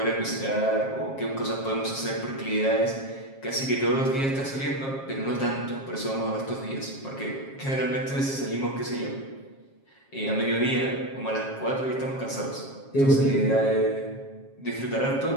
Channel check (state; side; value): late; right; 7.4 ms